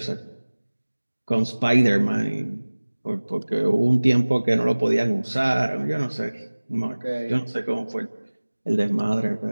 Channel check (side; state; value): both; inverted; correlation -1.00